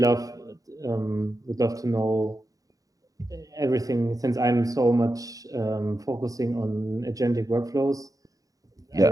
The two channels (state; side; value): late; left; 0.17 ms